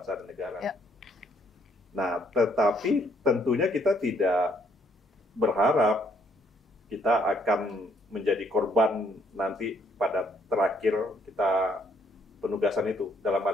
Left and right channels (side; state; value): both; normal; correlation 0.67